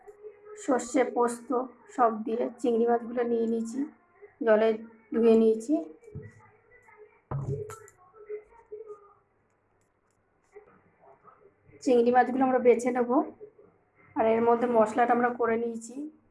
সর্ষে পোস্ত সব দিয়ে চিংড়ি মাছগুলো নিয়ে নিয়েছি, জলে ধুয়ে নিয়েছি। চিংড়ি মাছগুলো আমরা বেছে নেব। আর এর মধ্যে মশলাটা আমরা করে নিয়েছি।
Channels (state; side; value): identical; both; correlation 1.00